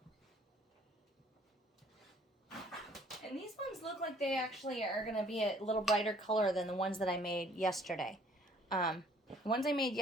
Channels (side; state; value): both; normal; correlation 0.59